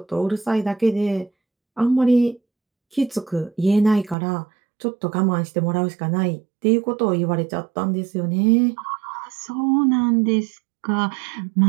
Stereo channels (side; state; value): left; drops out; at 4.2 s